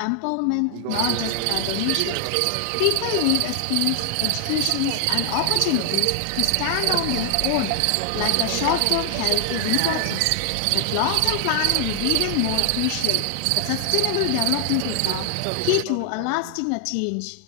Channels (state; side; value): different; both; correlation 0.00